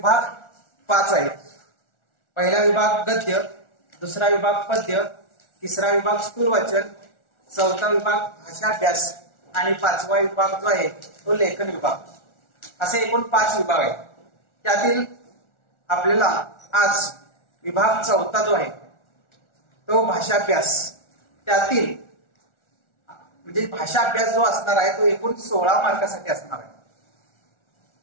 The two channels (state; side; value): late; right; 1.4 ms